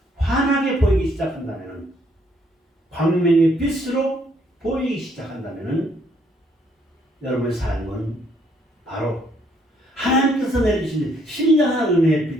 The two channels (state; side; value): normal; both; correlation 0.69